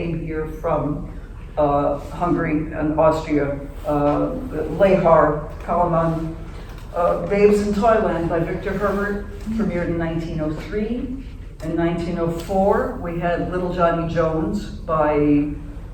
here from Hungary and Austria. Lehar, Kalaman, Babes in Toyland by Victor Herbert, premiered in 1903. In 1904, we had Little Johnny Jones by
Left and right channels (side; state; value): both; identical; correlation 1.00